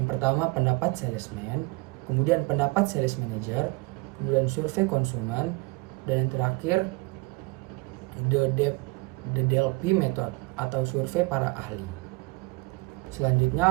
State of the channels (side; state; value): left; quieter; 25.4 dB